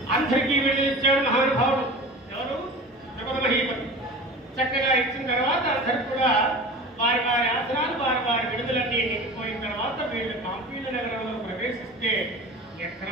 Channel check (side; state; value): both; normal; correlation 0.36